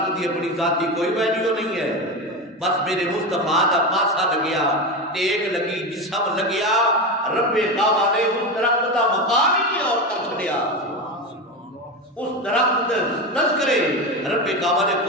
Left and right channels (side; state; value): both; normal; correlation 0.19